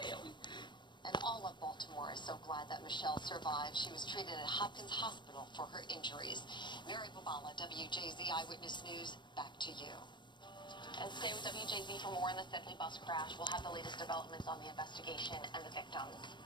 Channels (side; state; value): right; late; 0.22 ms